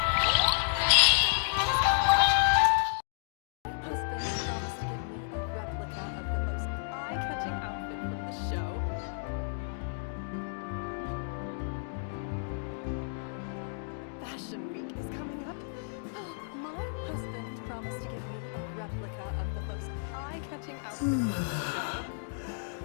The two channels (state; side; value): silent; right; digital silence